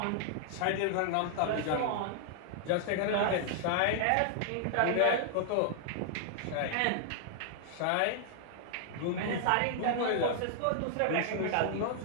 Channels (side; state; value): both; different; correlation -0.01